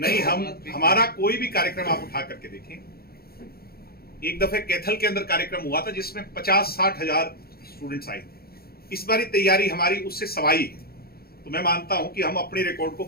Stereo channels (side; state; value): right; late; 0.44 ms